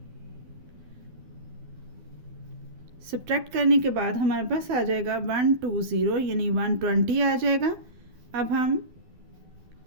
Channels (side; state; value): left; late; 12 ms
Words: सब्ट्रैक्ट करने के बाद हमारे पास आ जाएगा 120, यानी 120 आ जाएगा। अब हम